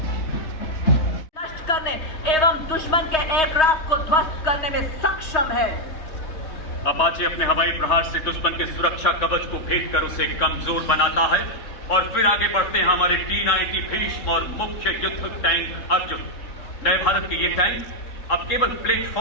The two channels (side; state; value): right; late; 3.2 ms